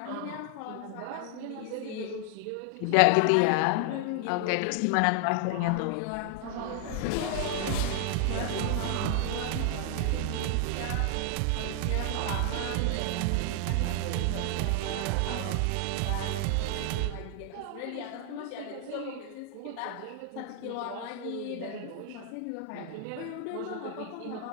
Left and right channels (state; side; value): different; both; correlation 0.00